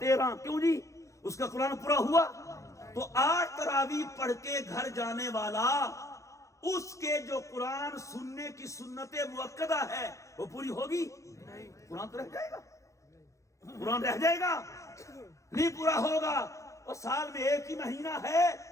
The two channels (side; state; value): right; late; 0.15 ms